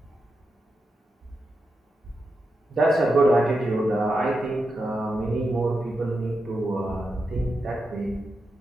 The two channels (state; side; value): normal; both; correlation 0.87